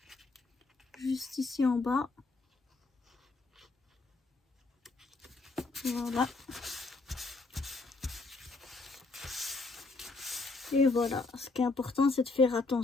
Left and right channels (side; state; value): right; quieter; 3.6 dB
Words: juste ici en bas. Voilà. Et voilà, ce qui est important, c'est de faire